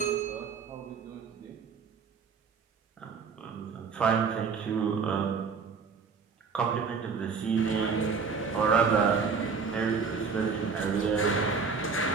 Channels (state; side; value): quieter; left; 5.4 dB